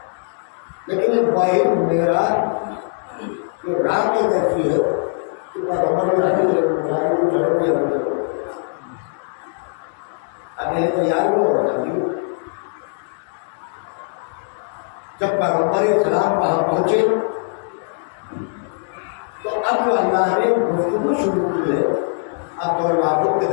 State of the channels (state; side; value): silent; right; digital silence